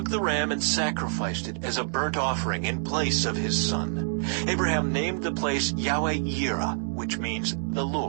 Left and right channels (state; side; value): silent; left; digital silence